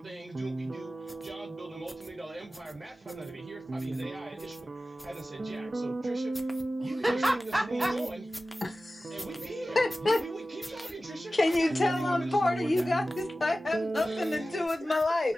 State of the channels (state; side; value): normal; both; correlation 0.95